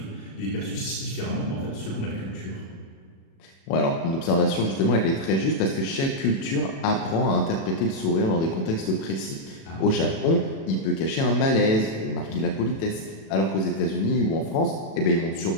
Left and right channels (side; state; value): right; late; 37 ms